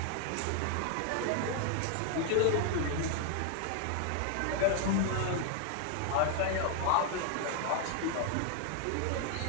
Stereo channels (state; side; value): different; both; correlation 0.00